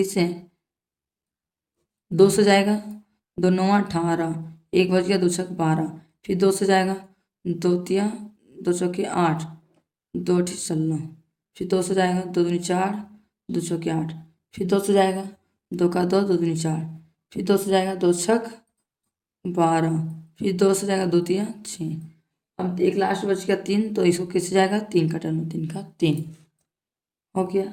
से। 2 से जाएगा 2 9 18, 1 बच गया 2 छक 12, फिर 2 से जाएगा 2 तिया 2 चौकी 8, 2 अठी 16, फिर 2 से जाएगा 2 दूनी 4, 2 चौकी 8, फिर 2 से जाएगा 2 का 2, 2 दूनी 4, फिर 2 से जाएगा 2 छक 12, फिर 2 से जाएगा 2 तिया 6। अब एक लास्ट बच गया 3, तो इसको किससे जाएगा, 3 का टर्म, 3 का 3 हो गया।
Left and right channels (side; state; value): both; identical; correlation 1.00